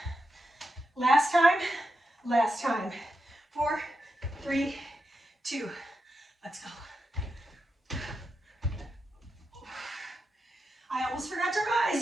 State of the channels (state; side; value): normal; both; correlation 0.87